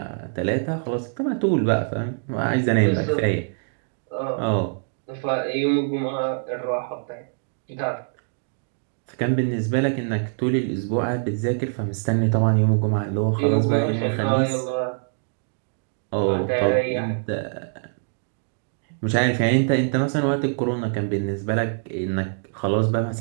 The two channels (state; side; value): silent; left; digital silence